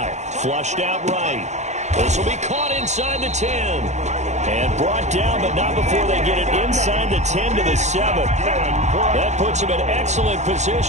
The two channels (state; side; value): late; left; 0.33 ms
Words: Flushed out right. This will be caught inside the 10. And brought down, but not before they get it inside the 10 to the 7. That puts them in excellent